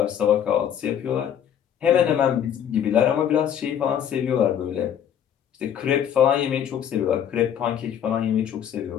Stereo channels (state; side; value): quieter; right; 9.3 dB